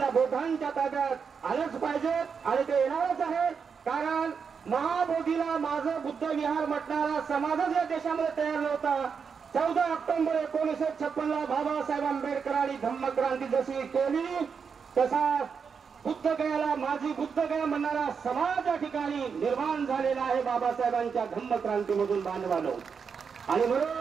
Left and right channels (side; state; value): left; quieter; 6.1 dB